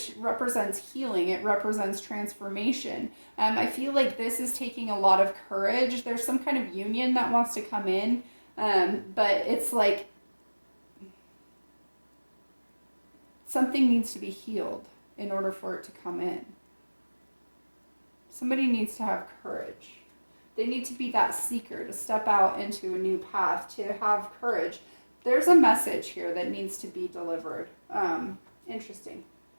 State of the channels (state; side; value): inverted; both; correlation -1.00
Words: represents healing. It represents transformation. I feel like this is taking a lot of courage. There's some kind of union that wants to come in, but it's like something needs to be healed in order for it to come in. Somebody needs to have courage. They need to be that seeker, to step out into a new path, to have courage. There's a message here that needs to be delivered. Interesting.